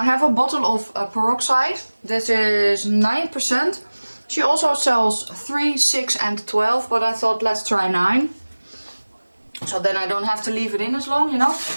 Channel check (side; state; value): both; inverted; correlation -1.00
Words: have a bottle of peroxide. This is 9%. She also sells 3, 6 and 12, but I thought let's try 9. So then I don't have to leave it in as long, you know.